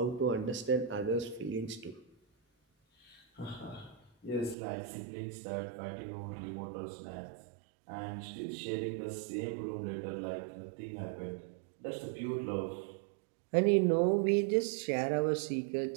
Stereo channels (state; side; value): drops out; left; at 4.5 s